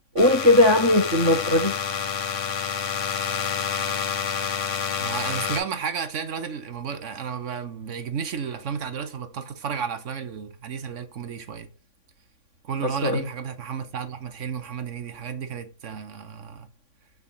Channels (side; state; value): left; late; 3.6 ms